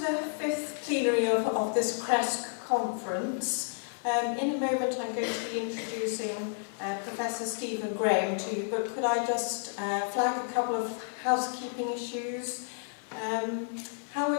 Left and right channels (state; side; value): silent; right; 57 dB below the other